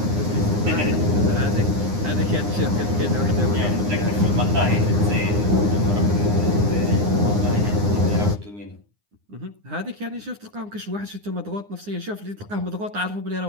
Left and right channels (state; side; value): late; left; 9.7 ms